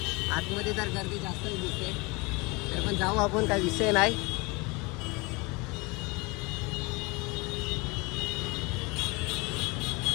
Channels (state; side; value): quieter; right; 26.5 dB